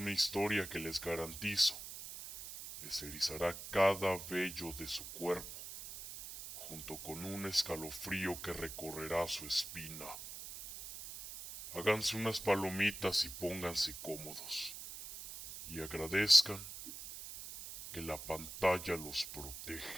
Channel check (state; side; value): noise; right; hiss, 10 dB below the sound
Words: historia que les garantizo les erizará cada vello de su cuerpo, junto con un escalofrío que recorrerá su espina. Háganse unas palomitas y pónganse cómodos, y agradezcan que la pantalla los